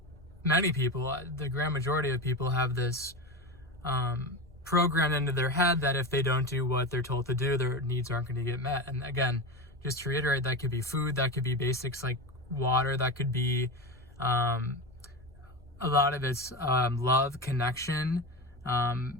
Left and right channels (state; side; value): normal; both; correlation 0.22